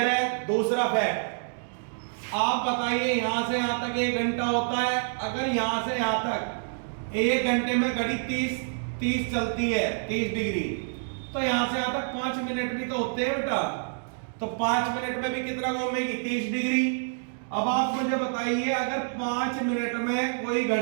है? दूसरा फैक्ट, आप बताइए यहां से यहां तक 1 घंटा होता है। अगर यहां से यहां तक 1 घंटे में घड़ी 30 चलती है, 30 डिग्री, तो यहां से यहां तक 5 मिनट भी तो होते हैं बेटा। तो 5 मिनट में भी कितना घूमेगी? 30 डिग्री। अब आप मुझे बताइए अगर 5 मिनट में कोई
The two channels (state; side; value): silent; left; digital silence